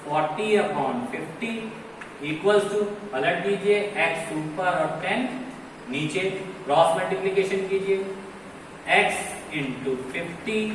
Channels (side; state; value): both; identical; correlation 1.00